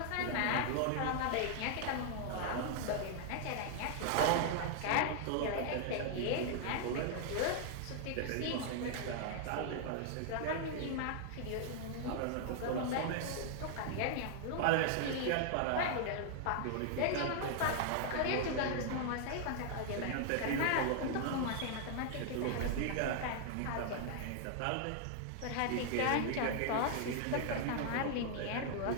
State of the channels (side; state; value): both; different; correlation 0.00